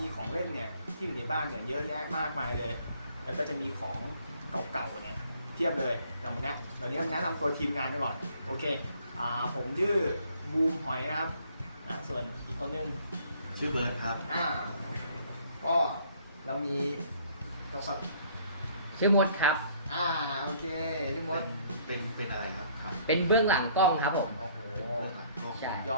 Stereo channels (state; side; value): inverted; both; correlation -0.61